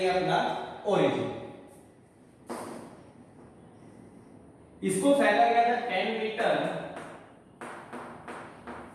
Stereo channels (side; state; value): both; identical; correlation 1.00